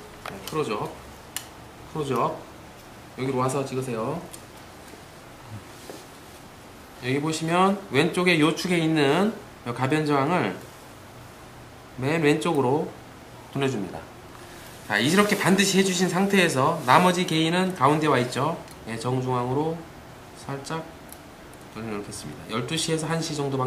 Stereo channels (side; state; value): both; identical; correlation 1.00